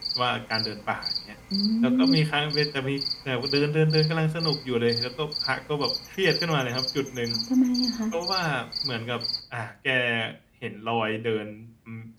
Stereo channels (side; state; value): both; identical; correlation 1.00